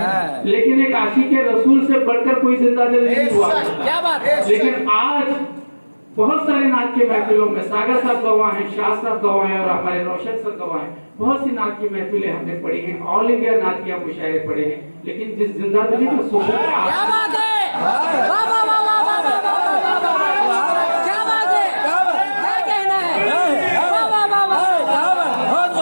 लेकिन एक आशिक रसूल से बढ़कर कोई जिंदा दिल नहीं हुआ। क्या बात है। लेकिन आज बहुत सारे नात के महफिलों में सागर साहब गवाह हैं, शाह साहब गवाह हैं और हमारे रोशन सर गवाह हैं। बहुत सी नात की महफिलें हमने पढ़ी हैं, ऑल इंडिया नातिया मुशायरे पढ़े हैं, लेकिन जिस जिंदा दिली का सुकून, क्या बात है, वाह वाह वाह वाह वाह वाह वाह, क्या बात है, क्या कहना है, वाह वाह वाह वाह।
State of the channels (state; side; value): inverted; both; correlation -1.00